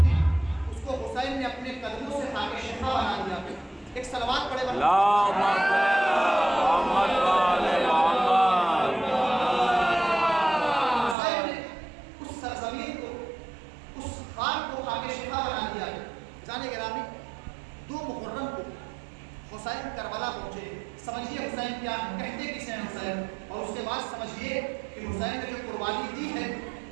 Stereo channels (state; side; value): drops out; left; at 11.2 s